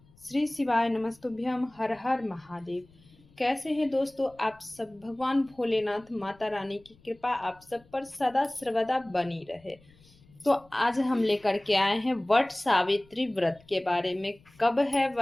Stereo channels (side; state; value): left; noise; rumble, 28 dB below the sound